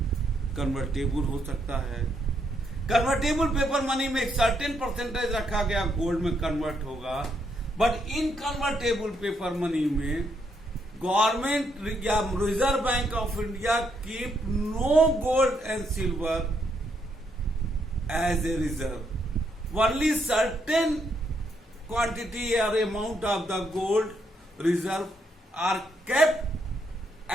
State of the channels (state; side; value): normal; both; correlation 0.76